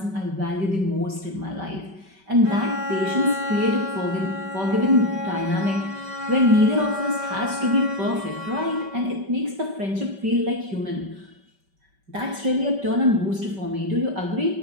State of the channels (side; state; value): left; late; 5.2 ms